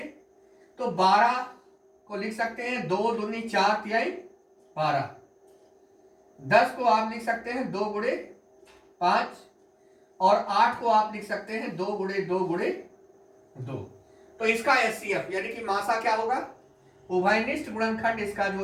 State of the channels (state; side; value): identical; both; correlation 1.00